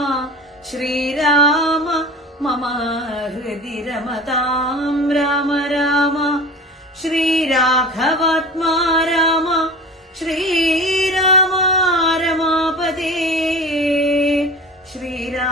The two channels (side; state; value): both; normal; correlation 0.36